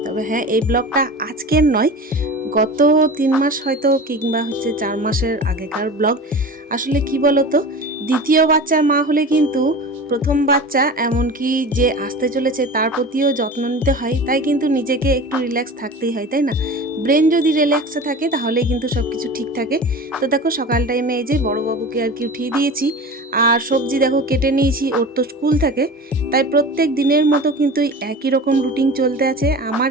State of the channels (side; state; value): both; normal; correlation 0.34